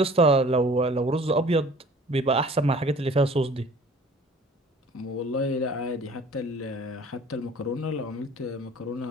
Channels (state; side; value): normal; both; correlation 0.49